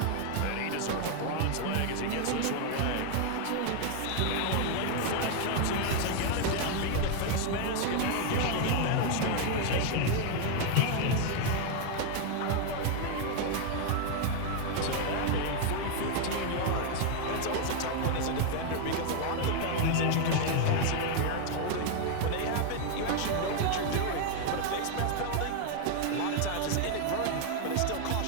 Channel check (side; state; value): both; different; correlation 0.00